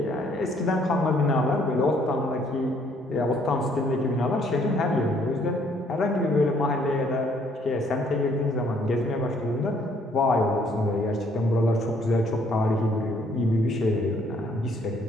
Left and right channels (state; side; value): normal; both; correlation 0.64